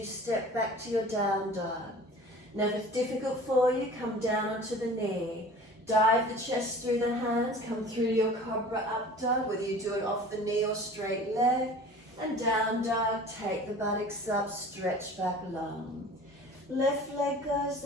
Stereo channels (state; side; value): normal; both; correlation 0.43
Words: step back to your down dog. Now if it's difficult for you, come down onto the knee. Dive the chest through the hands, come through your cobra up dog, whether you do it off the knee or straight leg. And down dog, take the buttocks up, stretch back long. Left leg